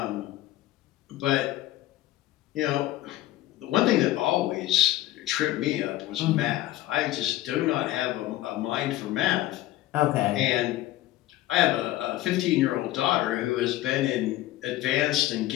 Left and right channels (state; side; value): quieter; right; 15.3 dB